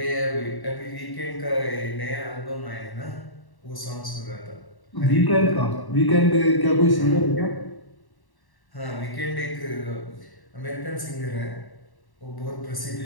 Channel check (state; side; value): late; right; 1.1 ms